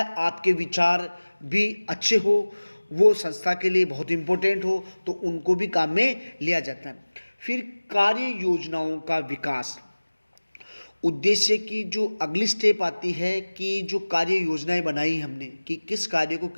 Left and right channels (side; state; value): both; inverted; correlation -1.00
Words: आपके विचार भी अच्छे हो, वो संस्था के लिए बहुत इम्पोर्टेंट हो, तो उनको भी काम में लिया जाता है। फिर कार्य योजनाओं का विकास। उद्देश्य की जो अगली स्टेप आती है कि जो कार्य योजनाएं बनाई हमने कि किस कार्य को